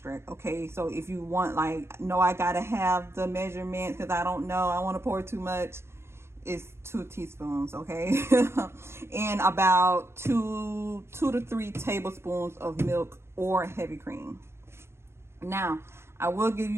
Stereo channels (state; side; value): late; left; 0.12 ms